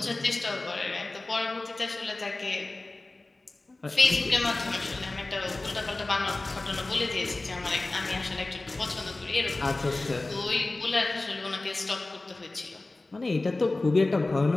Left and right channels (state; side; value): quieter; right; 3.0 dB